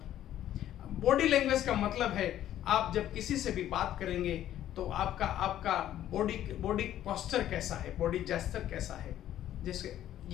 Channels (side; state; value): right; quieter; 12.1 dB